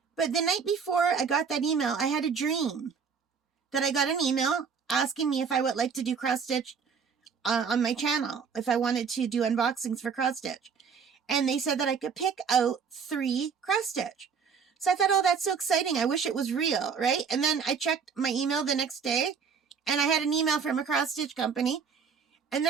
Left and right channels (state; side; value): quieter; left; 6.2 dB